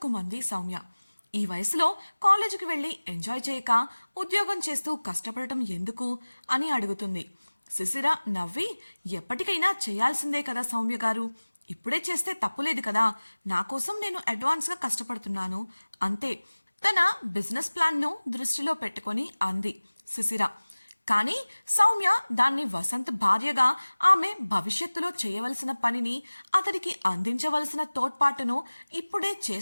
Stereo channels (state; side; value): inverted; both; correlation -1.00